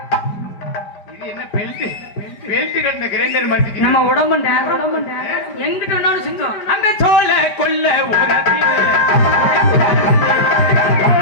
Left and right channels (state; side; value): late; right; 5.1 ms